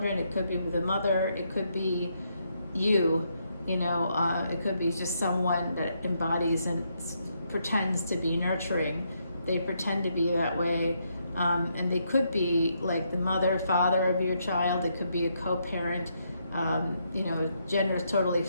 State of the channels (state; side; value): inverted; both; correlation -0.77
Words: It could be with the mother. It could be you. It could be just someone that embodies and pretends to be nurturing. They pretend to be that way. And they could be like the mother, father of your child. It could be a co-parent. Gender is totally